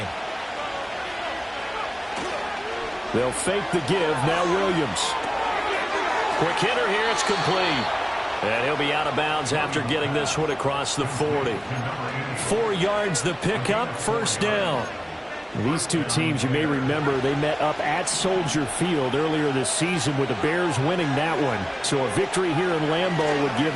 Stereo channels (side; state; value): both; identical; correlation 1.00